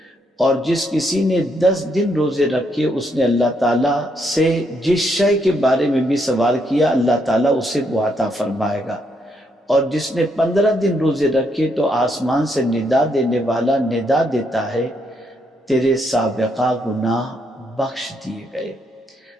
اور جس کسی نے 10 دن روزے رکھے اس نے اللہ تعالیٰ سے جس شے کے بارے میں بھی سوال کیا اللہ تعالیٰ اسے وہ عطا فرمائے گا، اور جس نے 15 دن روزے رکھے تو آسمان سے ندا دینے والا ندا دیتا ہے، تیرے سابقہ گناہ بخش دیے گئے،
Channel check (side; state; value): both; normal; correlation 0.75